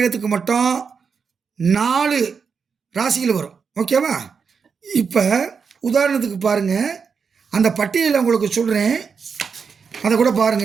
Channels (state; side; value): quieter; left; 5.9 dB